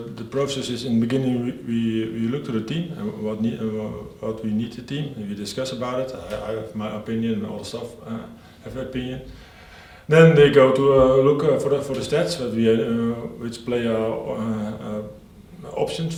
The process is, in the beginning we look to the team and what we need the team, and we discuss about it. I have my opinion, and all the staff have their opinion. Then they go to look for the stats, which player options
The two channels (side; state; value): both; identical; correlation 1.00